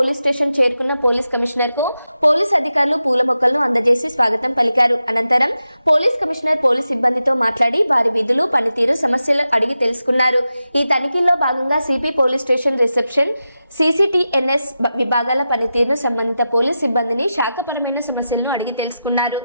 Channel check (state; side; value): inverted; both; correlation -0.91